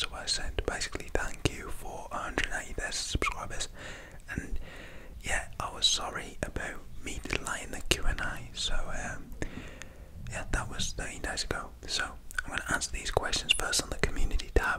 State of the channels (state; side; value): identical; both; correlation 1.00